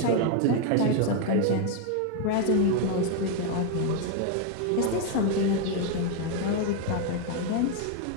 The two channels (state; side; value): different; both; correlation 0.01